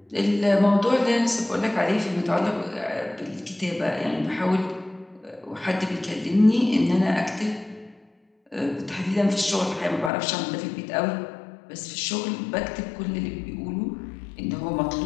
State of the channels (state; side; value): drops out; right; at 10.1 s